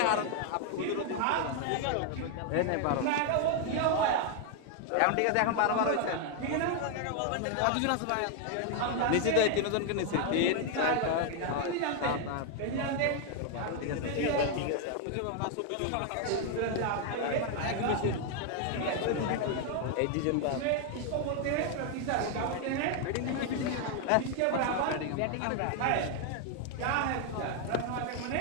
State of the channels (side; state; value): both; different; correlation 0.00